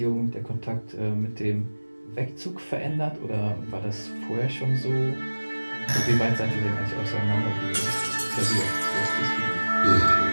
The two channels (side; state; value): both; inverted; correlation -1.00